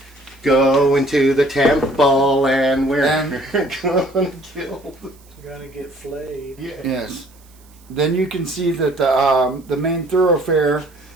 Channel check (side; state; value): right; noise; hiss, 29 dB below the sound